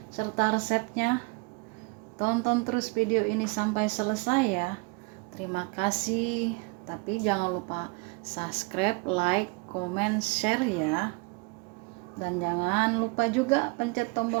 serta resepnya? Tonton terus video ini sampai selesai ya. Terima kasih. Tapi jangan lupa subscribe, like, komen, share ya. Dan jangan lupa juga pencet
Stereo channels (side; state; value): left; quieter; 29.0 dB